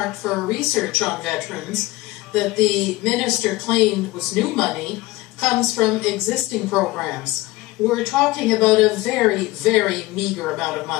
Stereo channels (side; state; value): right; quieter; 19.4 dB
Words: for research on veterans that the minister claimed was new money comes from existing programs. We're talking about a very, very meager amount of